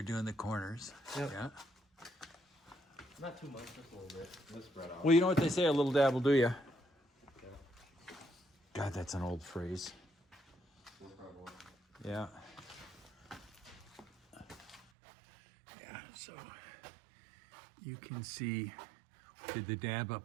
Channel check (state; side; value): drops out; left; at 14.9 s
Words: doing the corners. Yep. Yeah. Not too much, just a little bit. Just spread out. Well, you know what they say, a little dab will do you. God, that's an old phrase. Yeah. Yeah, so you can see we did the dab